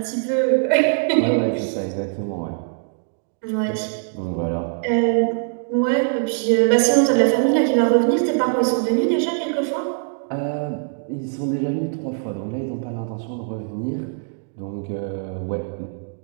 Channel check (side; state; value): left; silent; digital silence